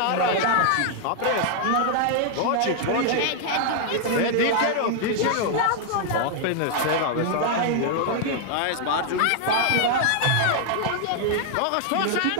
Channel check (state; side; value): different; both; correlation 0.00